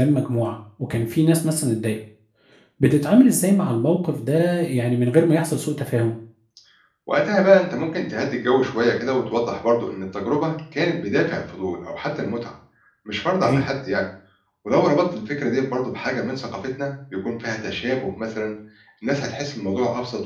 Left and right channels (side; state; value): both; identical; correlation 1.00